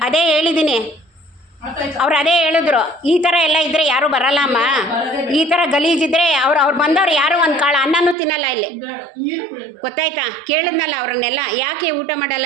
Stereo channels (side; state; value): left; drops out; at 8.2 s